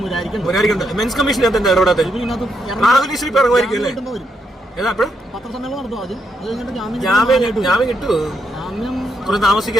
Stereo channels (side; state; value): both; normal; correlation 0.79